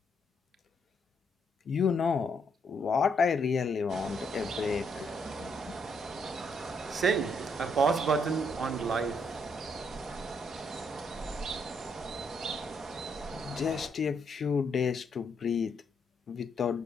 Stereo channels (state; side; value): normal; both; correlation 0.74